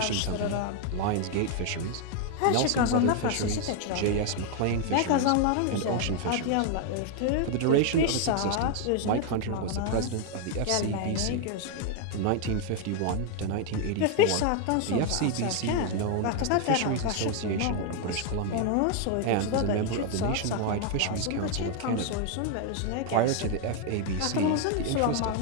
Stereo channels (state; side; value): different; both; correlation 0.00